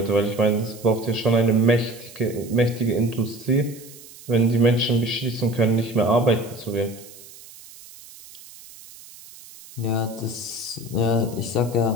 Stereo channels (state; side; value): noise; right; hiss, 19 dB below the sound